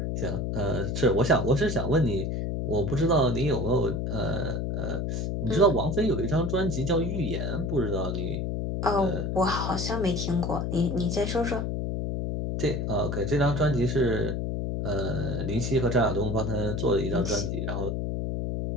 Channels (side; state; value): left; noise; hum, 1 dB below the sound